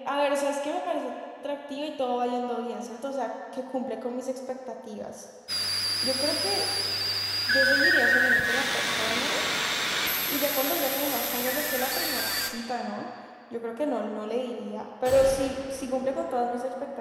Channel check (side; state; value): both; identical; correlation 1.00